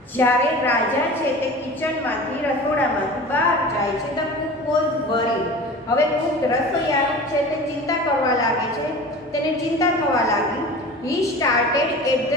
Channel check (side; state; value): both; normal; correlation 0.37